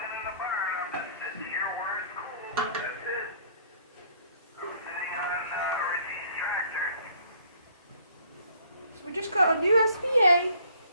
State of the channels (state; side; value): inverted; both; correlation -0.59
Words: So we just got a new SBA